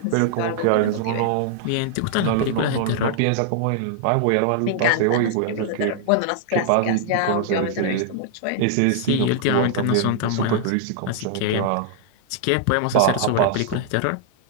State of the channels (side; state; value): both; different; correlation -0.01